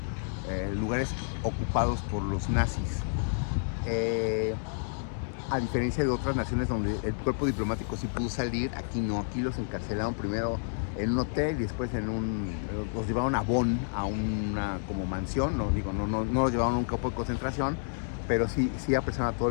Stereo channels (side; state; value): right; silent; digital silence